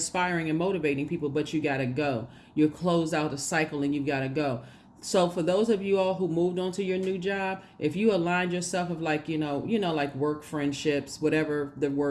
and motivating people, but you got to go. You're closed out the cycle and you've got to go. So for those of you all who moved on to your new job, if you aligned yourself of like, like work friendships, whatever the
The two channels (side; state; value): both; identical; correlation 1.00